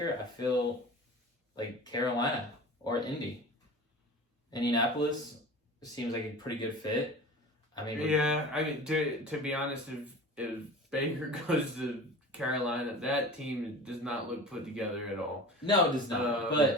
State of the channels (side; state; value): both; normal; correlation 0.37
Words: I feel like Carolina or Indy. Indianapolis seems like a pretty good fit. I mean, to be honest, if Baker goes to Carolina, that team does not look put together at all. No, it does not.